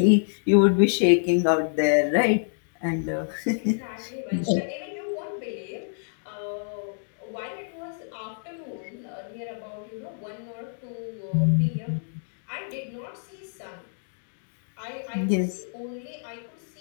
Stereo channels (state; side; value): silent; right; digital silence